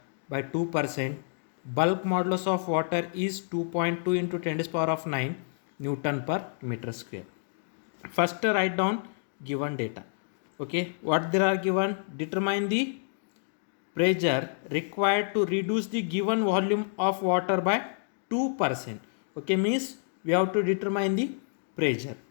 by 2%. Bulk modulus of water is 2.2 into 10 to the power of 9 Newton per meter square. First write down given data. Okay, what there are given? Determine the pressure required to reduce the given volume of water by 2%. Okay, means we have to determine the pressure.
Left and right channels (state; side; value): silent; right; digital silence